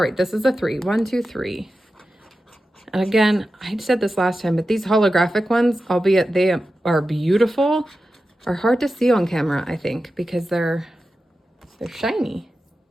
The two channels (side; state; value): both; normal; correlation 0.92